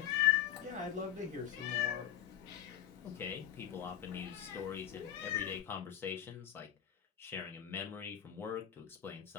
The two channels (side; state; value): right; quieter; 10.8 dB